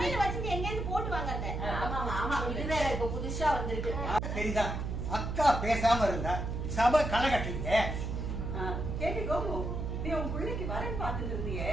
வச்சுட்டு எங்க போட்டு வாங்க. ஆமா, இது வேற இப்ப புதுசா வந்திருக்கு. சரிதான், அக்கா பேசாம இருந்தா சபை களை கட்டுறீங்க. கேட்டு கோமு, நீ உன் பிள்ளைக்கு வரன் பார்த்துட்டு இருந்தியே,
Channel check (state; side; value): noise; right; hum, 3 dB below the sound